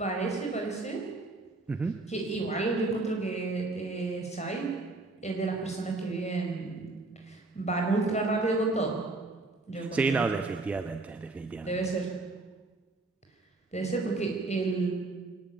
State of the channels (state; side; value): quieter; left; 3.2 dB